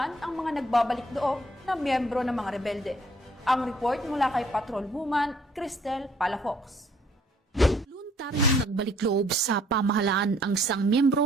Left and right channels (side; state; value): both; normal; correlation 0.62